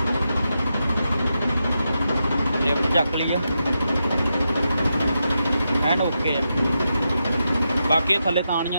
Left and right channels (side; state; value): both; inverted; correlation -0.86